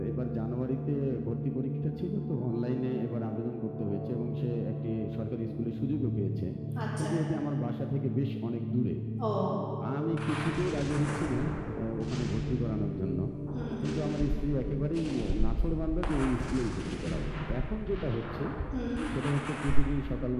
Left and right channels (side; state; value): both; identical; correlation 1.00